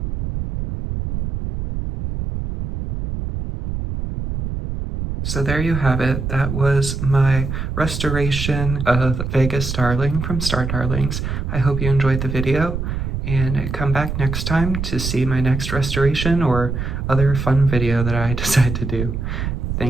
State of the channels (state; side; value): noise; right; rumble, 4 dB below the sound